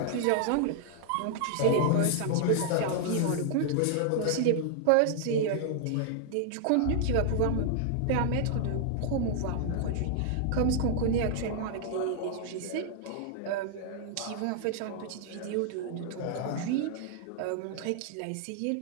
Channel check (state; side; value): different; both; correlation -0.01